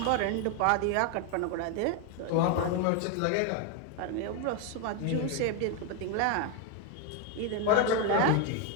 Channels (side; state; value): both; different; correlation 0.01